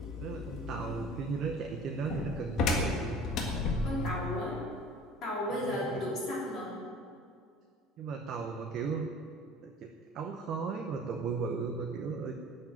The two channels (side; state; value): both; normal; correlation 0.45